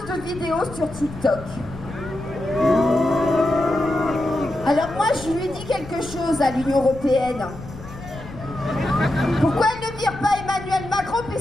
de vidéos sur TikTok. Alors moi, je lui dis quelque chose à l'Union européenne. Pourquoi elle ne vire pas Emmanuel Macron,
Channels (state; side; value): noise; left; rumble, 14 dB below the sound